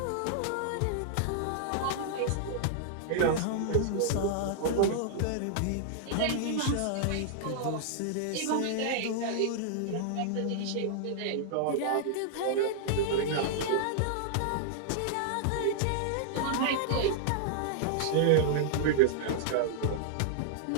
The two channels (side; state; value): both; different; correlation -0.01